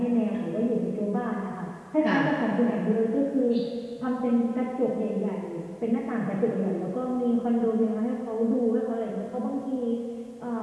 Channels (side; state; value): both; identical; correlation 1.00